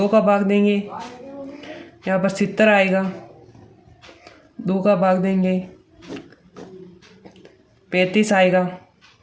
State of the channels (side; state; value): both; identical; correlation 1.00